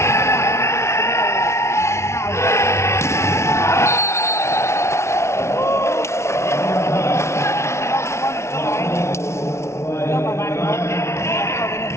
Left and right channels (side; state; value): right; late; 0.13 ms